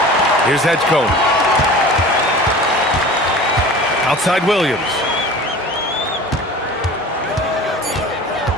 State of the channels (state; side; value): normal; both; correlation 0.40